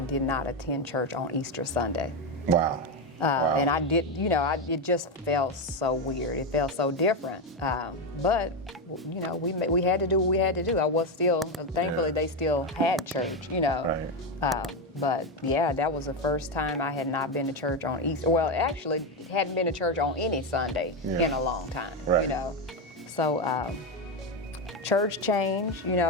not attend church on Easter Sunday. Wow. And I did, it just felt so weird. It felt so different. But, we had to do what we had to do. I was still, thankfully, they still had church, Right. But, yeah, that was the first time I had not been to church on Easter. Well, actually, hadn't been to church on any Sunday in a long time, Right. So, church change,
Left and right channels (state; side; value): normal; both; correlation 0.10